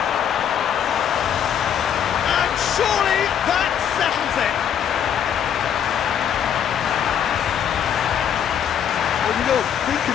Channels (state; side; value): quieter; right; 8.8 dB